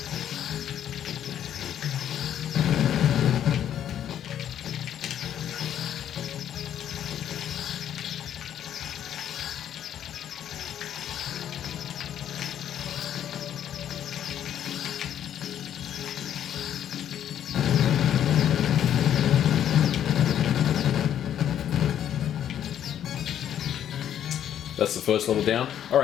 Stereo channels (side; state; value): right; quieter; 10.2 dB